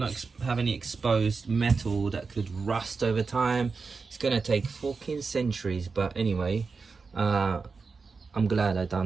have any exposed metal that could rust over time. It's going to take fucking centuries, but anyway, I'm glad I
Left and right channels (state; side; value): quieter; left; 4.6 dB